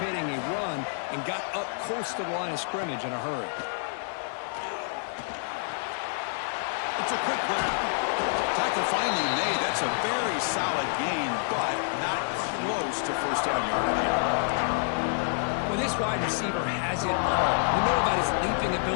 a run and got up close to the line of scrimmage in a hurry. It's a quick grab. Tackle finally made. That's a very solid gain, but not close to first down yardage here. Well, this wide receiver has it all. We know about his leaping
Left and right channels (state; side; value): silent; right; digital silence